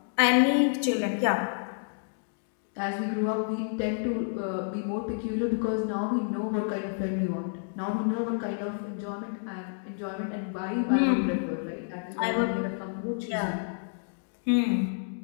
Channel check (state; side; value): silent; right; digital silence